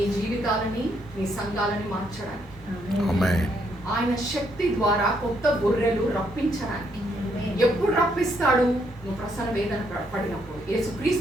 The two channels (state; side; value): normal; both; correlation 0.73